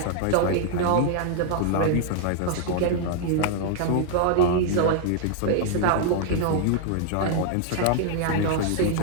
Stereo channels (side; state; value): both; different; correlation 0.00